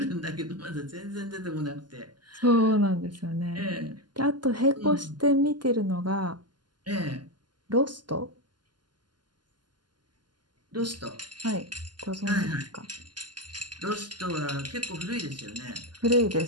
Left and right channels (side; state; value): left; late; 0.71 ms